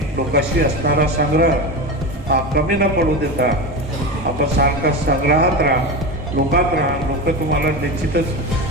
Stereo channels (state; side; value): normal; both; correlation 0.22